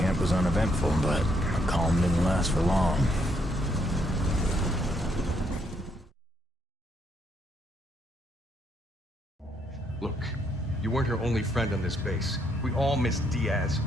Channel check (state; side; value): normal; both; correlation 0.73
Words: was uneventful, but the calm didn't last for long. Look, you weren't her only friend on this base. We all miss Diaz.